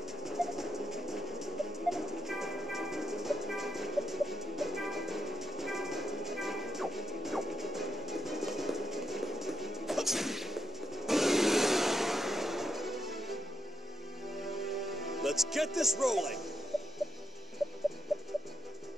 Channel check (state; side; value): normal; both; correlation 0.79